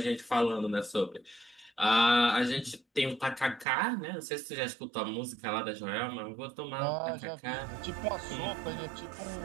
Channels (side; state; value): left; drops out; at 3.7 s